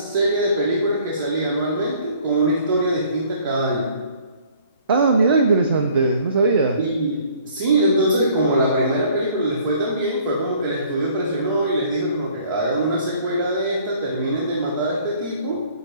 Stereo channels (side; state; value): both; inverted; correlation -0.57